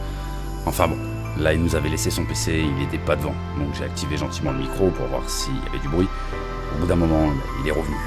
Enfin bon, là il nous avait laissé son PC, il n'était pas devant. Donc j'ai activé gentiment le micro pour voir s'il y avait du bruit. Au bout d'un moment, il est revenu.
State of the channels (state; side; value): identical; both; correlation 1.00